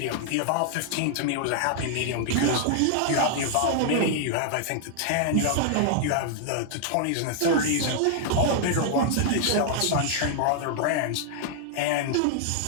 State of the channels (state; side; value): different; both; correlation 0.00